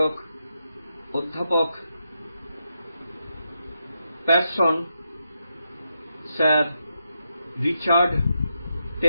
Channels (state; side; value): inverted; both; correlation -0.84